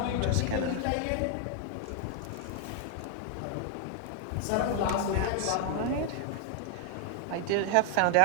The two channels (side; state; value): both; different; correlation 0.00